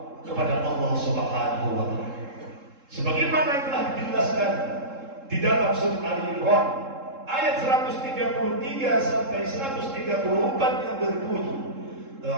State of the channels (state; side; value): late; left; 3.7 ms